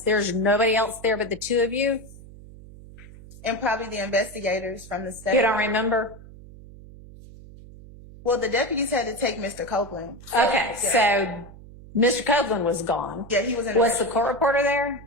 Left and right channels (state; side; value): noise; right; hum, 18 dB below the sound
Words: nobody else there but the two of you? And probably the investigators from the state. You don't remember? Well, the deputies had to take Mr. Copeland. Okay, Yeah. so Mr. Copeland was gone. Yeah, he was in Was the court reporter there?